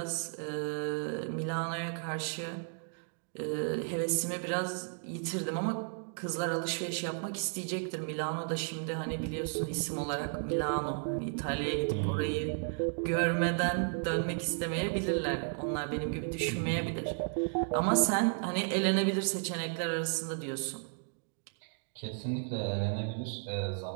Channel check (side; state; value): left; silent; 55 dB below the other